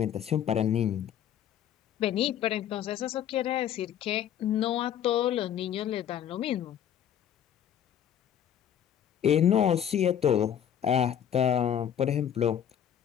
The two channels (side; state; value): right; quieter; 9.7 dB